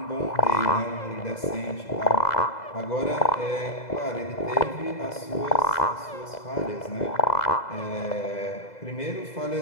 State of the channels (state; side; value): late; right; 2.0 ms